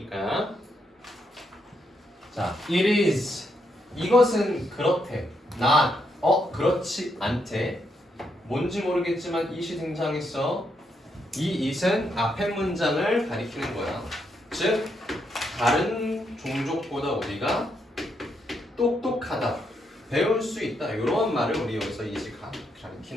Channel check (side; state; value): both; normal; correlation 0.79